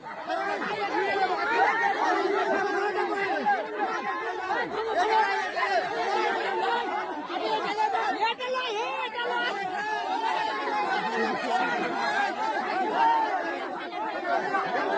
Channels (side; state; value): both; identical; correlation 1.00